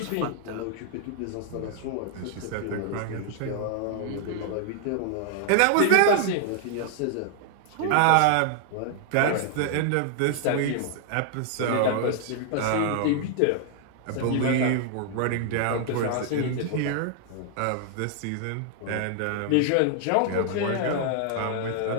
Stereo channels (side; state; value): both; different; correlation 0.00